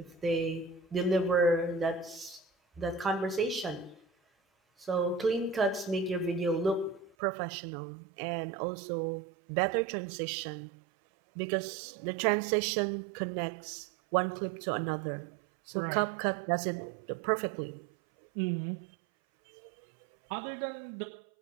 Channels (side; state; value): left; drops out; at 7.2 s